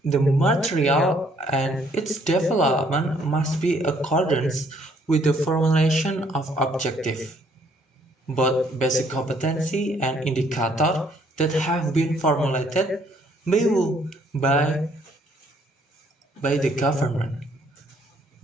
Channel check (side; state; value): both; normal; correlation 0.65